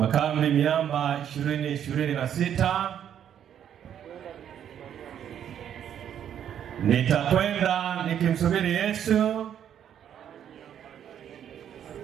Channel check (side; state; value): left; quieter; 9.5 dB